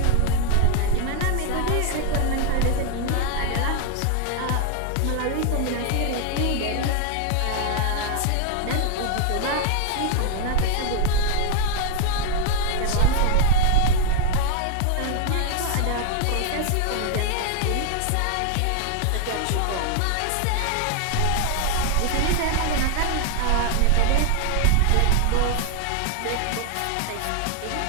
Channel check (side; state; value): both; different; correlation 0.00